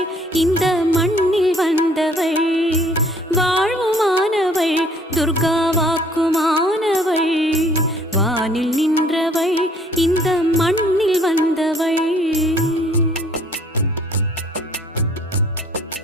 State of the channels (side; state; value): both; normal; correlation 0.59